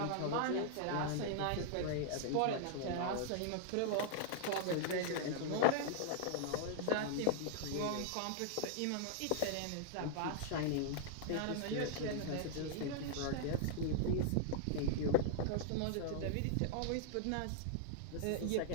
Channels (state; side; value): different; both; correlation -0.01